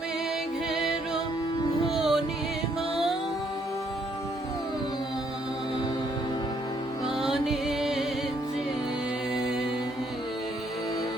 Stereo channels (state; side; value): normal; both; correlation 0.69